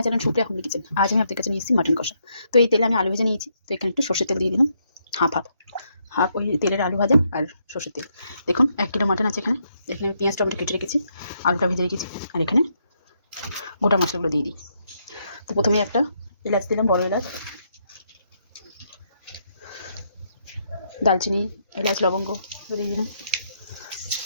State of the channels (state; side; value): inverted; both; correlation -0.76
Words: channel Supriya homely kitchen. आज मैं आपके কাছে নিয়ে এসেছি মাটন কষা। তো এই তেলে আমি আলু ভেজে নিয়েছি। তো এখানে একটু সরষের তেল দিয়ে দিলাম, হাফ ওই তেলের আলু ভাজা আর সরষের তেল। দেখুন 1 কিলো মাটন আছে। এখানে আমি পেঁয়াজ টমেটো কেটে রেখেছি, আলুটা ভেজে রেখেছি, আর এখানে গোটা মশলাগুলো দিয়ে দিই। তো প্রথমে একটা এলাচ দিলাম, বড় এলাচ, দালচিনি, এলাচ, লবঙ্গ দিয়ে দিলাম,